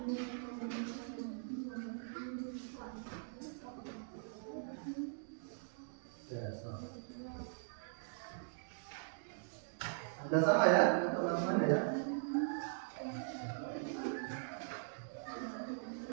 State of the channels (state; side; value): silent; left; digital silence